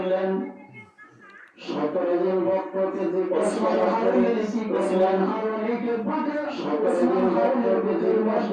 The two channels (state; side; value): identical; both; correlation 1.00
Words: 17 জন ভক্তকে যে ওসমান হারুনি কি করলেন? হারুনিকে বাঁধে 17 জন ভক্তকে যে